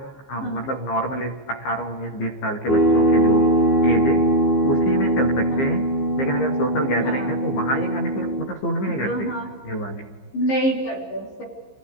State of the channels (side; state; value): right; late; 15 ms